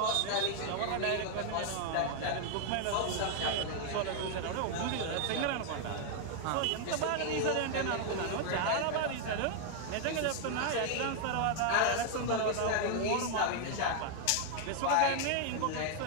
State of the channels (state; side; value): different; both; correlation 0.00